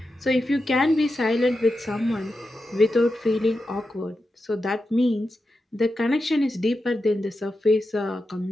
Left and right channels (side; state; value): both; normal; correlation 0.89